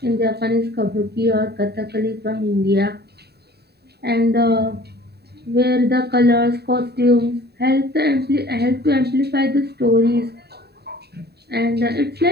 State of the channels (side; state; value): left; late; 0.47 ms